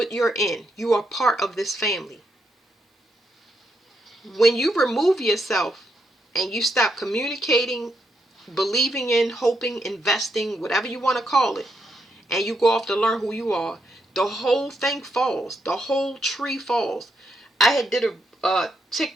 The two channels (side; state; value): both; normal; correlation 0.80